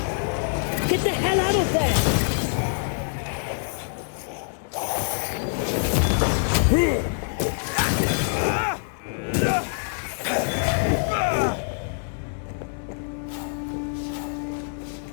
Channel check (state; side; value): silent; right; digital silence